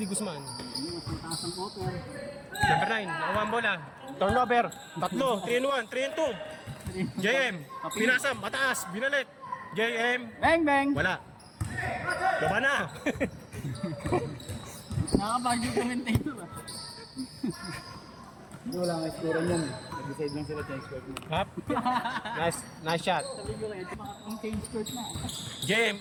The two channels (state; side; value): identical; both; correlation 1.00